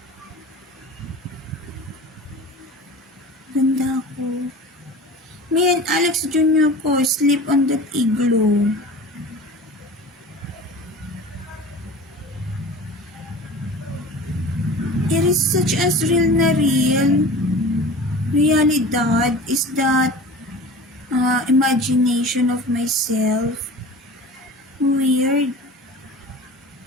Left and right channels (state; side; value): normal; both; correlation 0.37